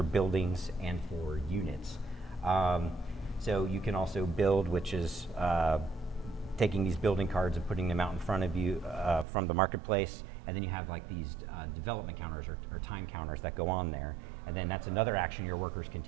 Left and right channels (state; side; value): drops out; left; at 9.2 s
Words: buildings, and for units. So you can also build, which is taking these building cards and putting them out in front of you from the marketplace, and then you have like these development counters or time counters that go on there, and then that's another action your workers can